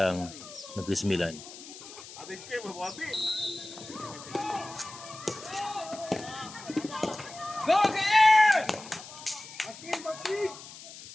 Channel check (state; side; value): noise; left; hiss, 15 dB below the sound